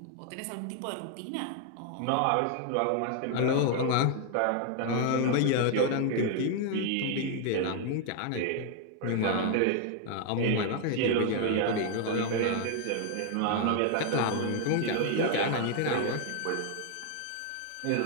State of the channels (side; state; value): both; different; correlation 0.00